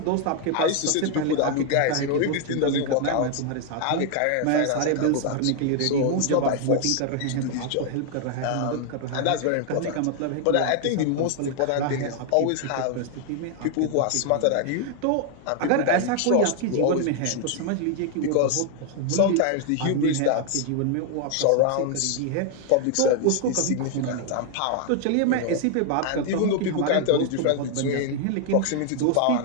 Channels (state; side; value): different; both; correlation 0.00